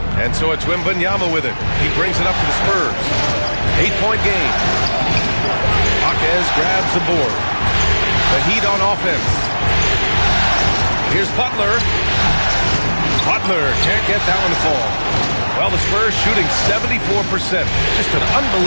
And so it's Wembanyama with it. He brings it up to the Spurs. 8-point game. Jaquez grabs the board. The Heat on offense. Here's Butler. Butler can't get that one to fall. Well, the Spurs shooting 74%. Just an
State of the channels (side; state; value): both; inverted; correlation -1.00